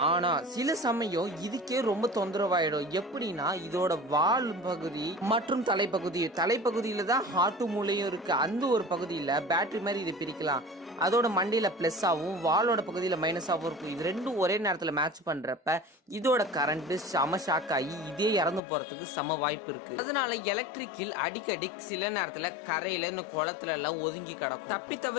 ஆனா சில சமயம் இதுக்கே ரொம்ப தொந்தரவாயிடும். எப்படின்னா இதோட வால் பகுதி மற்றும் தலைப்பகுதியில தான் ஹார்ட் மூளையும் இருக்கு. அந்த ஒரு பகுதி பேட்டரி மாதிரி இது பிரிக்கலாம். அதோட மண்டையில பிளஸ் ஆகும், வாலோட பகுதியில மைனஸ் ஆகும் இருக்கும். இது ரெண்டும் ஒரே நேரத்துல மேட்ச் பண்றப்ப இதோட கரண்ட் செம ஷாக் ஆகி இதே இறந்து போறதுக்கு சம வாய்ப்பு இருக்கு. அதனால எலக்ட்ரிக்கில் அடிக்கடி சில நேரத்துல கரையில இந்த குளத்துல எல்லாம் ஒதுங்கி கிடக்கும். தப்பி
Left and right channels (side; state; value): right; drops out; at 18.6 s